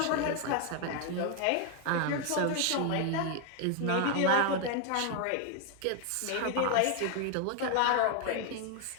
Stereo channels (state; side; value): different; both; correlation 0.00